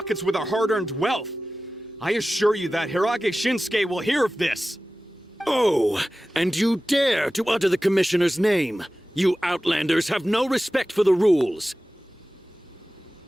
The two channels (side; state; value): both; normal; correlation 0.96